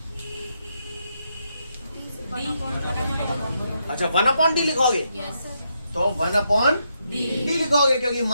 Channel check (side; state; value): both; inverted; correlation -0.80